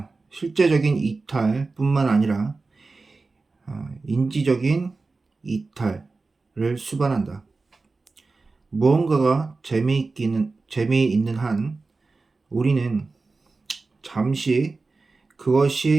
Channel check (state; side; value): quieter; left; 3.8 dB